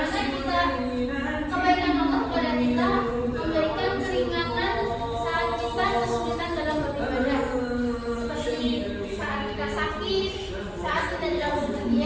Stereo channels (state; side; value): identical; both; correlation 1.00